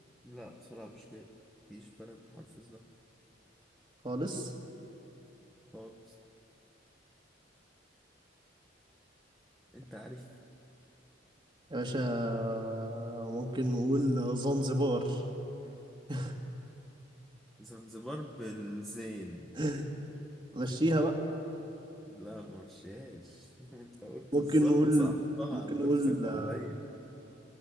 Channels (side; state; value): both; normal; correlation 0.76